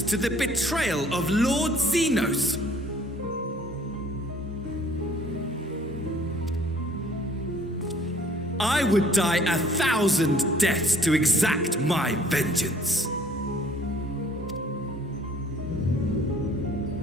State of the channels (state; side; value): normal; both; correlation 0.57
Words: to the betrayal of Lord Xenos. I would die 1,000 deaths to exact my vengeance.